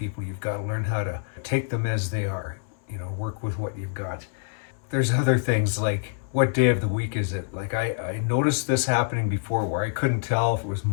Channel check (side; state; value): right; silent; 61 dB below the other